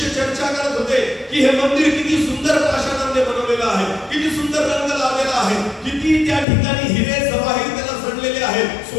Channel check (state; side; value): drops out; right; at 6.5 s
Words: चर्चा करत होते की हे मंदिर किती सुंदर पाषाणाने बनवलेलं आहे, किती सुंदर रंग लावलेला आहे, किती त्या ठिकाणी हिरे जवाहीर त्याला जडलेले आहेत,